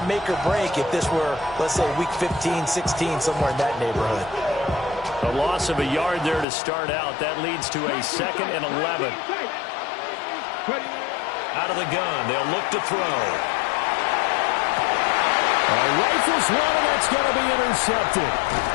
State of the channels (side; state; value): right; drops out; at 6.5 s